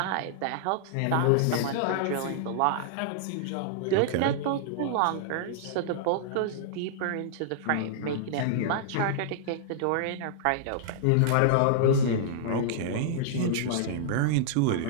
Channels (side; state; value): both; different; correlation -0.01